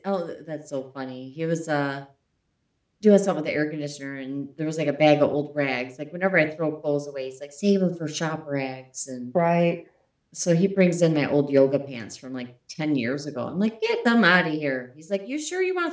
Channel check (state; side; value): identical; both; correlation 1.00